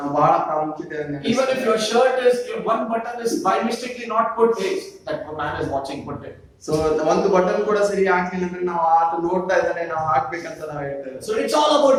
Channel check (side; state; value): both; identical; correlation 1.00